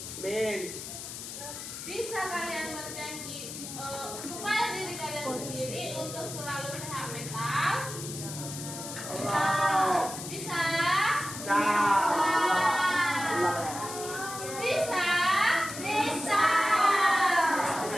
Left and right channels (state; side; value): noise; left; hiss, 9 dB below the sound